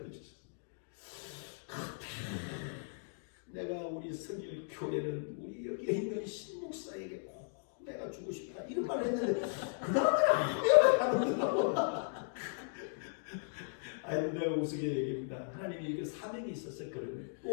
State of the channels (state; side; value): silent; right; digital silence